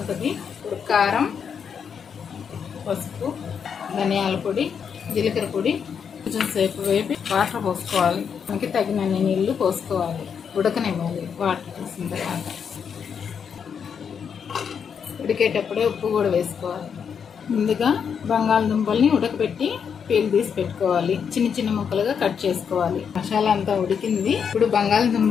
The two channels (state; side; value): quieter; right; 7.0 dB